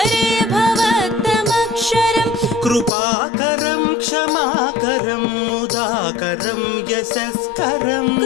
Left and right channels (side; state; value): right; drops out; at 2.9 s